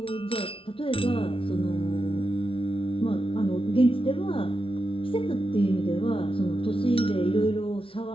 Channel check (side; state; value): right; late; 0.26 ms